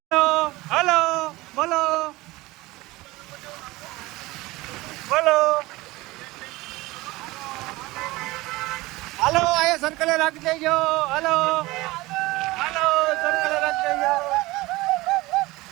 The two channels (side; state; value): left; quieter; 20.4 dB